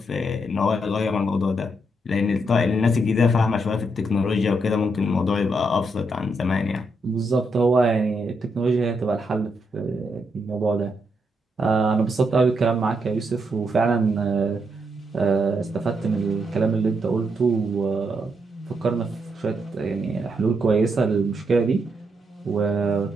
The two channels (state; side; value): normal; both; correlation 0.79